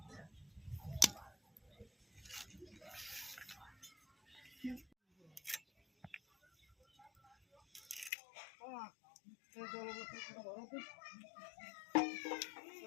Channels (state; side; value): drops out; right; at 8.1 s